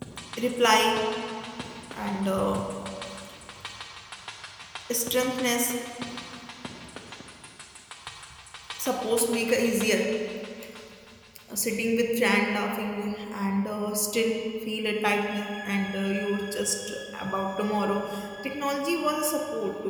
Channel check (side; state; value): both; identical; correlation 1.00